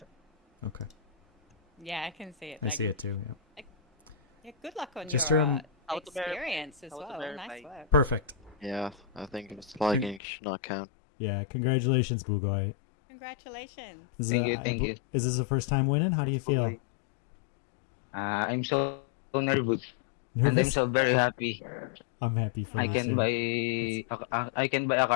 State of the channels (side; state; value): right; drops out; at 10.2 s